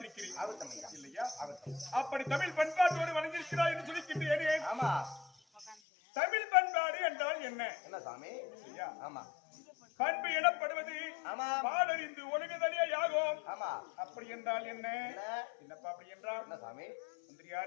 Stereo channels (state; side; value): drops out; right; at 5.8 s